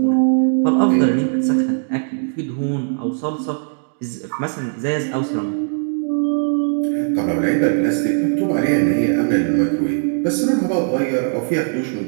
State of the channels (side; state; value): left; silent; digital silence